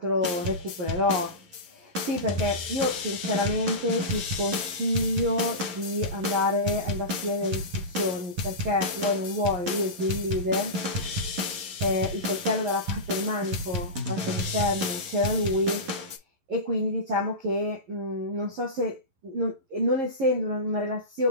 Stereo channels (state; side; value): late; left; 11 ms